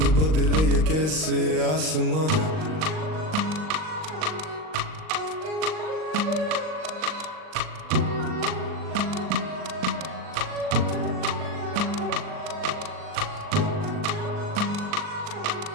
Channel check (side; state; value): left; late; 39 ms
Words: बदले ये कैसे आसमां।